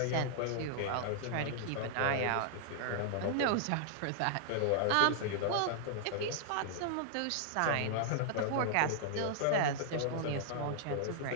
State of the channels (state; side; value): different; both; correlation -0.01